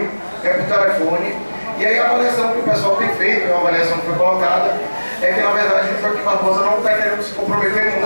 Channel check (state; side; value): inverted; both; correlation -1.00